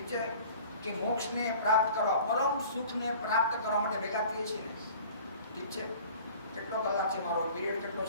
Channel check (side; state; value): both; inverted; correlation -0.46